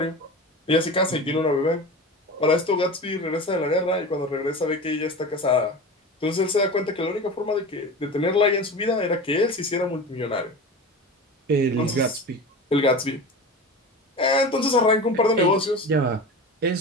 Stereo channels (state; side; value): normal; both; correlation 0.31